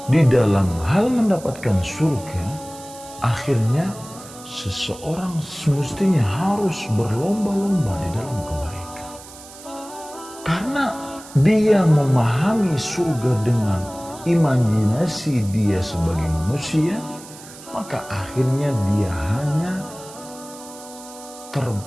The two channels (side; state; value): right; noise; hiss, 18 dB below the sound